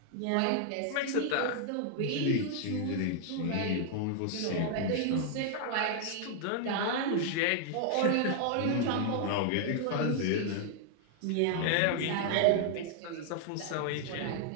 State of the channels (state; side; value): different; both; correlation 0.00